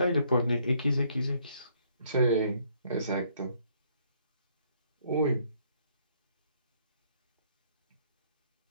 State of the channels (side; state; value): both; inverted; correlation -0.66